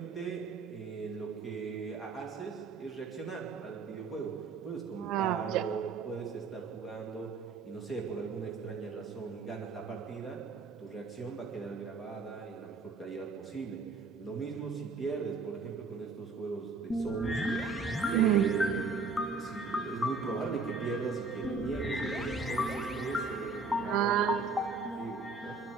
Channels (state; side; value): quieter; left; 4.3 dB